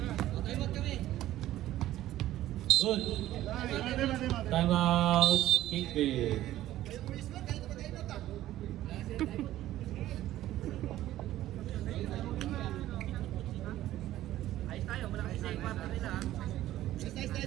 Good. Time out. Kingpin.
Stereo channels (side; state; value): left; quieter; 14.1 dB